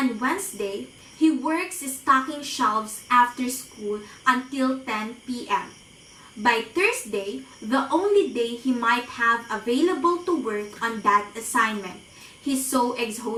Wednesday, he works stocking shelves after school until 10 p.m. By Thursday, the only day he might have available to work on that assignment, he's so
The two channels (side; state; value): both; identical; correlation 1.00